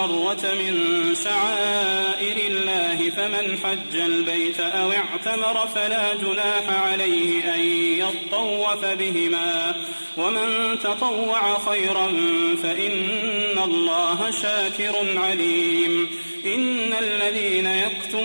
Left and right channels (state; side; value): inverted; both; correlation -1.00